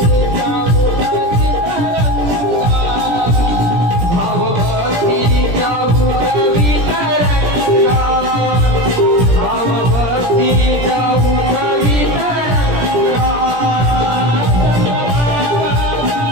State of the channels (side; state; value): left; late; 17 ms